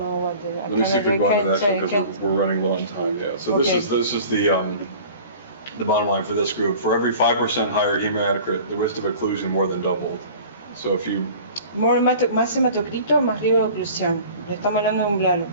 what the, Let me see if we can go into that because we're running low on time. Yeah. So okay. This is the bottom line for this group. For every 5% higher hematocrit, the risk of occlusion more than doubled. So if you más hematocrito, más riesgo de oclusión. Le estamos hablando de un blood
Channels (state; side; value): inverted; both; correlation -0.44